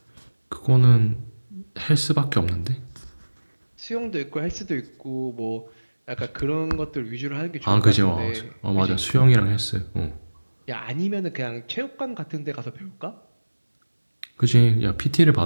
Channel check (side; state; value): both; inverted; correlation -1.00